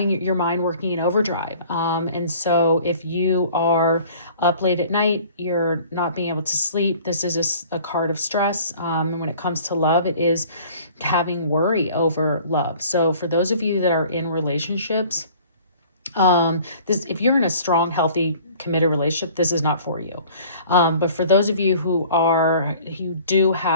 your mind working in overdrive. And so if you are up late at night, you're not being able to sleep, this is a card of stress. And when it comes to love, it is having worry over love. So for those of you that are in relationships, if you're in a strong, healthy, committed relationship, this is not for you. But for those of you who do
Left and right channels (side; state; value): both; inverted; correlation -0.50